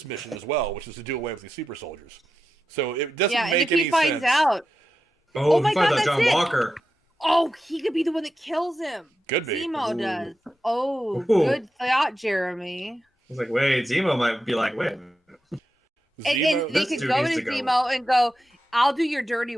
mission as well, which is to do away with these super soldiers. So it doesn't make any sense. Yeah, and if he finds out... Oh my God, that's John Walker. Oh, he could be the one that kills him. Could be. Zemo does. Oh, good thought, Jeremy. I was like, wait, Zemo might be like, wait. And they could go to Zemo and go, I'll do your dirty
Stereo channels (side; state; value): both; normal; correlation 0.89